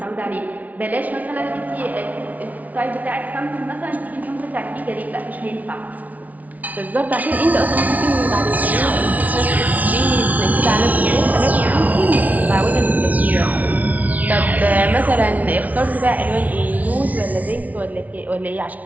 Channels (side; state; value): left; late; 0.073 ms